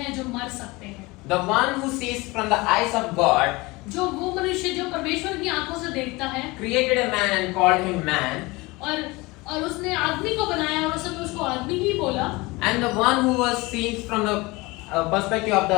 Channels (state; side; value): quieter; right; 23.0 dB